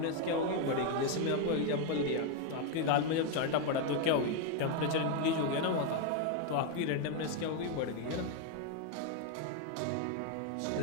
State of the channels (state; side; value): different; both; correlation 0.01